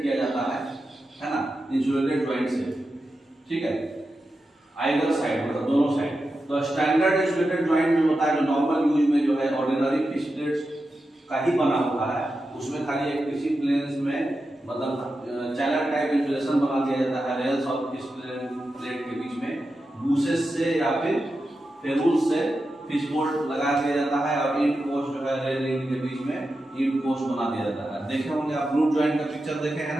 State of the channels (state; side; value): normal; both; correlation 0.90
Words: किया जाता है ना, इंसुलेटेड जॉइंट से, ठीक है। आइदर साइड मतलब दोनों साइड। तो स्टैंडर्ड इंसुलेटेड जॉइंट जो होता है, जो नॉर्मल यूज में जो है ऑर्डिनरी फिक्स्ड प्लेट्स का ही बना हुआ है, उसमें खाली एक किसी प्लेन्स में मतलब चैनल टाइप इंसुलेशन बना दिया जाता है रेल्स और फिक्स्ड प्लेट के बीच में बूसेस से या फिर फेरूल्स से फिश बोल्ट लगा दिया जाता है और इंड पोस्ट जो है रेल रिंग के बीच में इंड पोस्ट बना दिया जाता है। देखे होंगे आप ग्लूट जॉइंट का पिक्चर देखे